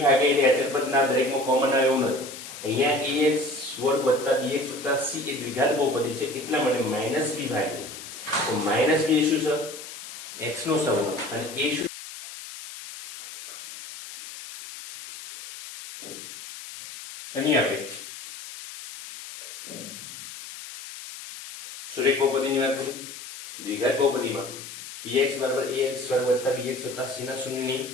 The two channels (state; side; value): noise; left; hiss, 12 dB below the sound